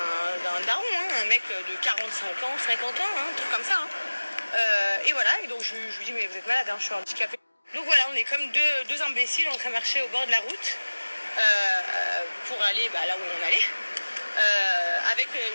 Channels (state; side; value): inverted; both; correlation -1.00